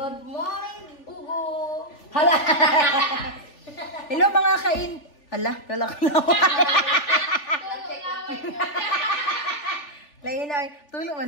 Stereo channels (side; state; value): right; late; 3.4 ms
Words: Good morning, Bugo. Hala. Hello mga kain. Hala, lalak na. Lain ay tulong